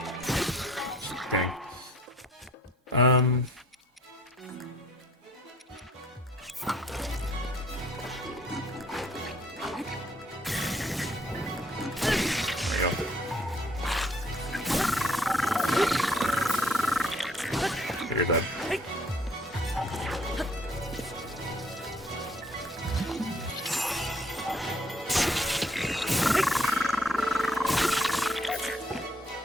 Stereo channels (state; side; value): normal; both; correlation 0.62